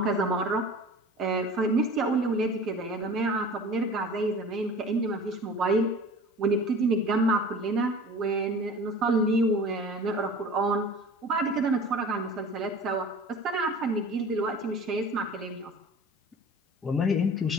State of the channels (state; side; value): normal; both; correlation 0.41